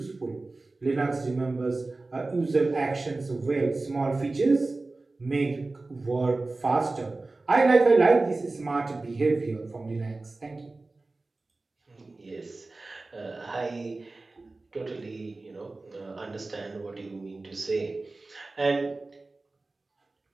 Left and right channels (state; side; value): quieter; left; 3.3 dB